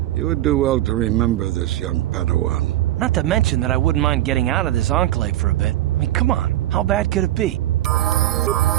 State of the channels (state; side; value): quieter; left; 14.2 dB